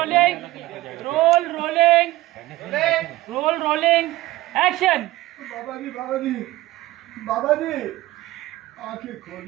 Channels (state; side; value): quieter; left; 17.4 dB